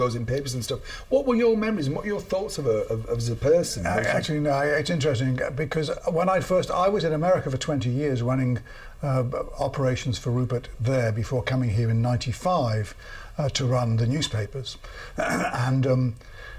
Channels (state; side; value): identical; both; correlation 1.00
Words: in papers and stuff. What were your memories and what were your thoughts of her as a person? Actually, no, it's interesting because when I was in America for 20 years running operations for Rupert there before coming here in '95 to run the newspapers. And